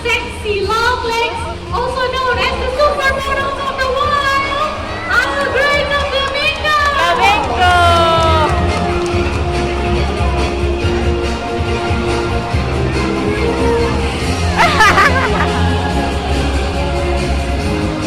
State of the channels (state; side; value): identical; both; correlation 1.00